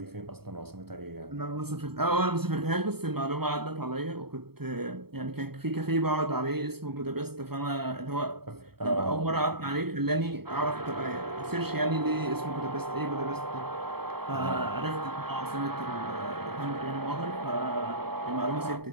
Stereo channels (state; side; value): late; left; 0.96 ms